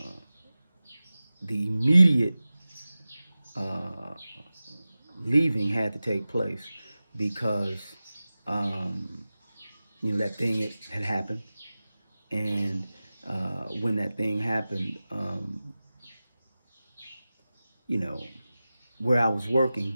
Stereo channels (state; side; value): inverted; both; correlation -0.96